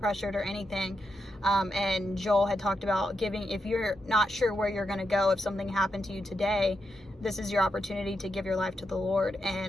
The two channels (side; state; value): both; normal; correlation 0.85